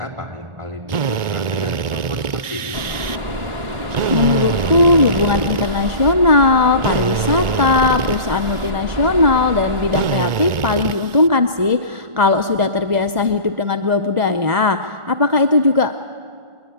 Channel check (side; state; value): left; late; 1.4 ms